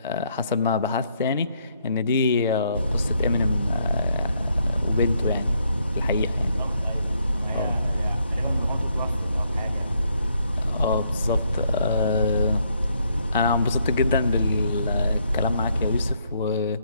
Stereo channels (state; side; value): inverted; both; correlation -0.72